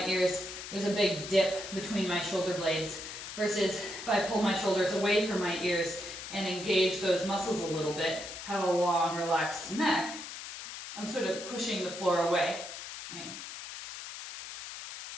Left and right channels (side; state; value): left; noise; hiss, 10 dB below the sound